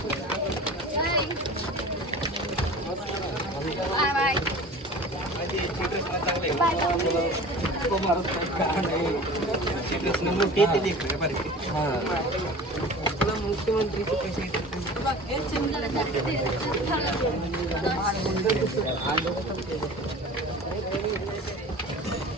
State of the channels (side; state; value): both; normal; correlation 0.39